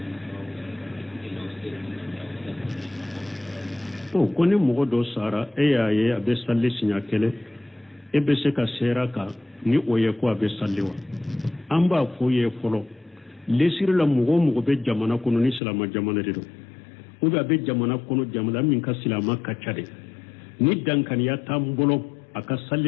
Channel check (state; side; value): drops out; right; at 15.6 s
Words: to koni mogo do sara yaye abe salli sinya kele ebe se ka sera ka ni oye ko abe salliwa amba fo ye folo lesir la mogo be jamana kono ni silama jamana de do o be jamana kono jamana min ka silama ka chade ni dankan ya tambolo aka